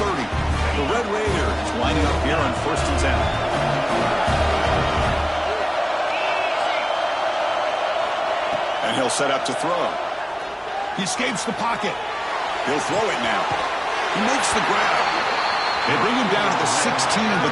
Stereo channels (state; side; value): identical; both; correlation 1.00